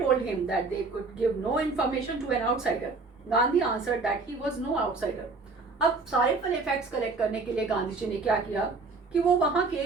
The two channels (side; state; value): left; quieter; 4.0 dB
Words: him that they could give no information to an outsider. Gandhi answered that he was no outsider. अब सारे पहले फैक्ट्स कलेक्ट करने के लिए गांधी जी ने क्या किया कि वो वहां